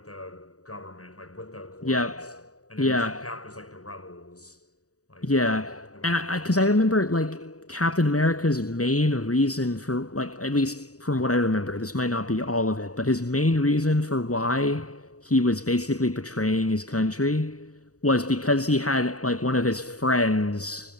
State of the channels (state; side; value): late; right; 0.66 ms